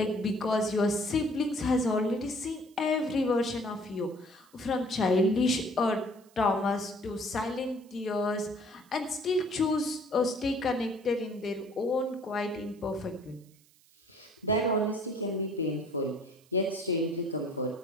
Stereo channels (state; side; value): noise; right; hiss, 29 dB below the sound